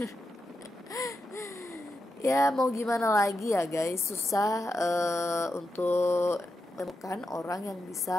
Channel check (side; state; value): both; normal; correlation 0.87